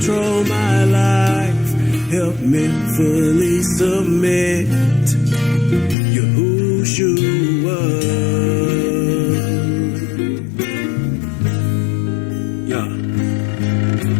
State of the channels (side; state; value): right; drops out; at 6.0 s